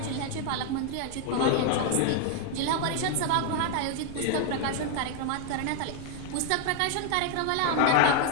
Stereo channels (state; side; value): different; both; correlation 0.01